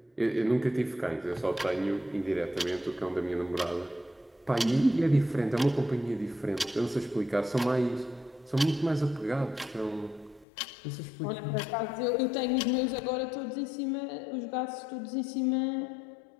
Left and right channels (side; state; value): right; drops out; at 10.5 s